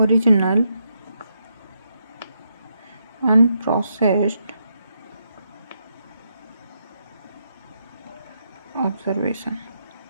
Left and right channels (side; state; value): both; inverted; correlation -0.80